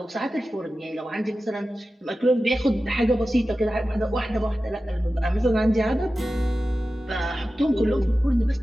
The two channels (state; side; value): normal; both; correlation 0.94